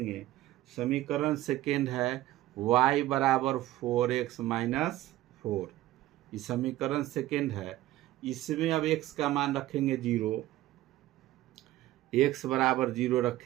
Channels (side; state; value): left; quieter; 15.4 dB